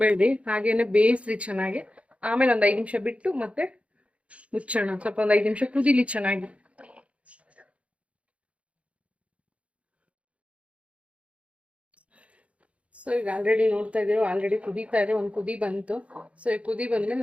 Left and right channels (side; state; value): left; late; 0.063 ms